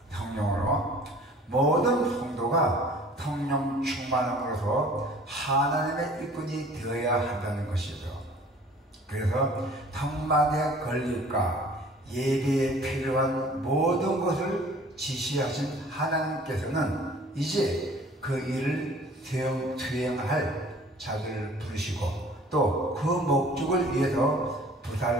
성령으로 모든 성도가 성령 충만함으로써 하나님의 일꾼이 되어야 한다는 것이죠. 그래서 성막의 건립과 예배에 필요한 모든 것을 지시하신 하나님께서는 이제 그 일을 수행할 자들을 부르시고 또 그 목적을 위해서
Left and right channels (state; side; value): normal; both; correlation 0.50